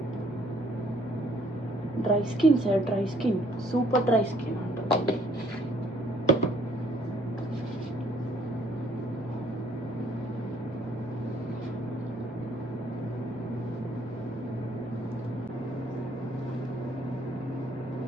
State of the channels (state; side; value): normal; both; correlation 0.63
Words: Dry skin sir, dry skin, super dry skin అంటుంది.